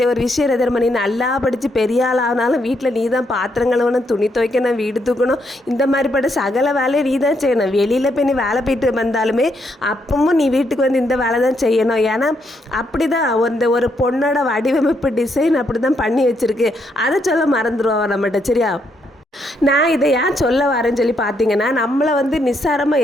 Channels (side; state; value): both; normal; correlation 0.76